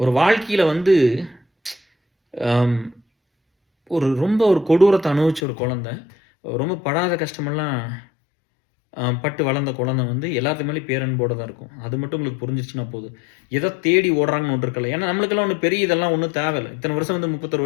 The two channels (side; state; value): right; drops out; at 5.4 s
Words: வாழ்க்கையில வந்து அம் ரொம்ப ஒரு கொடூரத்த அனுபவிச்ச ஒரு குழந்தை, ரொம்ப படாத கஷ்டமெல்லாம் பட்டு வளர்ந்த குழந்தை வந்து எல்லாத்து மேலயும் பேரன்போட தான் இருக்கும். அது மட்டும் உங்களுக்கு புரிஞ்சிருச்சுன்னா போதும். எத தேடி ஓடுறாங்கன்னு ஒண்ணு இருக்குல்ல. ஏன்னா நம்மளுக்கெல்லாம் ஒண்ணும் பெரிய இதெல்லாம் ஒண்ணும் தேவையில்ல. இத்தன வருஷம் வந்து 31